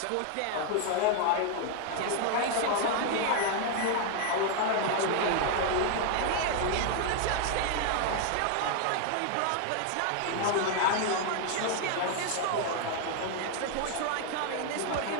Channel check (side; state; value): both; different; correlation 0.00